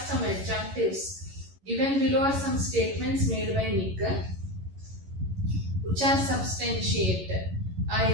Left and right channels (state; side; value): late; left; 11 ms